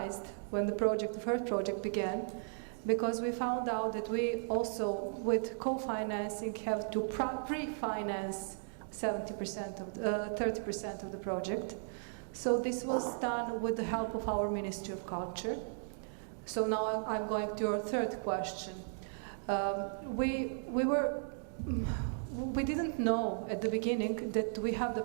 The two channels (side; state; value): left; silent; digital silence